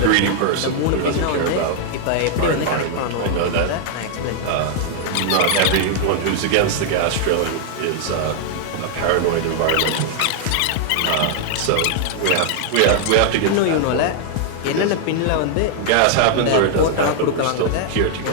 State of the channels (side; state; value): both; different; correlation 0.00